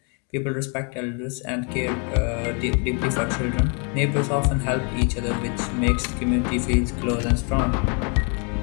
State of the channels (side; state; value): right; quieter; 36.4 dB